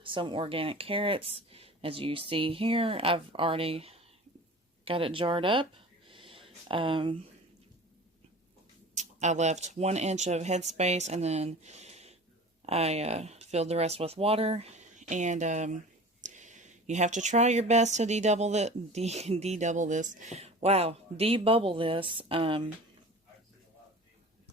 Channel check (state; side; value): normal; both; correlation 0.39